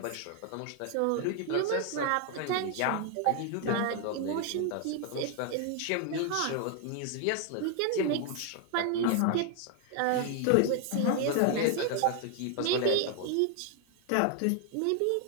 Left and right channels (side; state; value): both; different; correlation 0.01